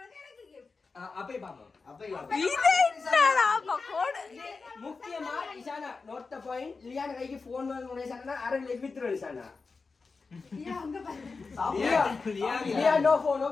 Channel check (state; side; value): quieter; right; 4.4 dB